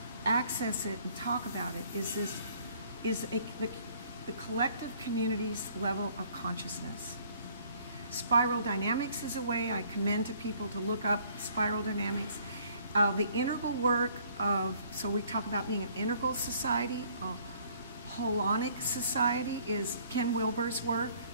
access it and talk about it, is the collective community's level of consciousness. Spiral dynamics is a way I commend to people to look up spiral dynamics. The integral work so we talk about being an integral society, a holonic society is Ken Wilber's work.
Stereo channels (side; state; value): both; inverted; correlation -0.60